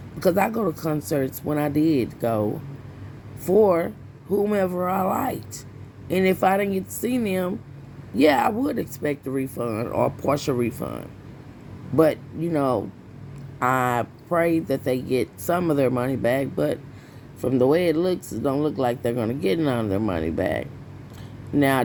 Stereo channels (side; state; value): both; identical; correlation 1.00